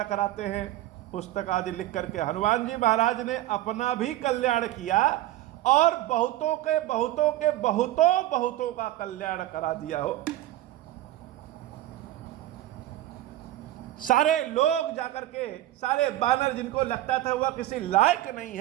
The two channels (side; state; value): left; quieter; 14.8 dB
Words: कराते हैं पुस्तक आदि लिख करके। हनुमान जी महाराज ने अपना भी कल्याण किया और बहुतों के बहुतों के बहुतों बहुतों का कल्याण करा दिया हो। सारे लोग जाकर के, सारे बानर जिनको लगता था वह किसी लायक नहीं